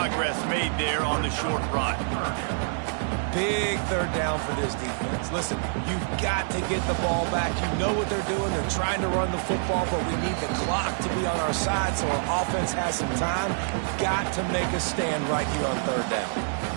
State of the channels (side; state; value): left; silent; digital silence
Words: made there on the short run. Big 3rd down for this defense. Listen, you've got to get the ball back. You know what they're doing. They're trying to run the football, but we need the clock to be on our side so our offense has some time. We've got to make a stand right here on 3rd down.